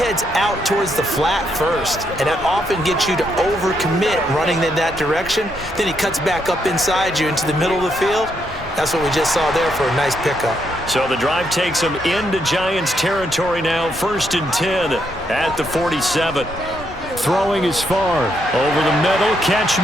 out towards the flat first, and that often gets you to overcommit running in that direction. Then he cuts back up inside you into the middle of the field. That's what we just saw there for a nice pickup. So the drive takes them into Giants territory now, 1st and 10 at the 47. Throwing is Favre. Over the middle, catch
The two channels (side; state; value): both; normal; correlation 0.77